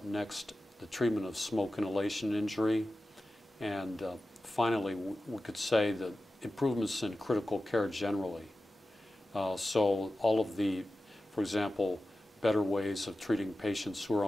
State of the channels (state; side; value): normal; both; correlation 0.94